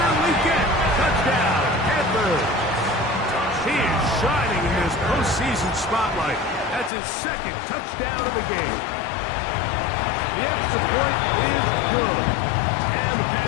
Legette, touchdown, Panthers. He is shining in this postseason spotlight. That's his 2nd touchdown of the game. The extra point is good. And the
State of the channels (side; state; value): right; drops out; at 6.9 s